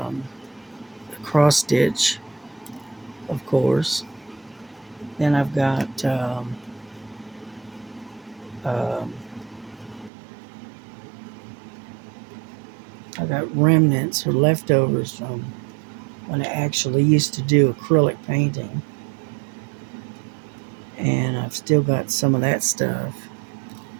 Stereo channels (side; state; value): left; drops out; at 10.1 s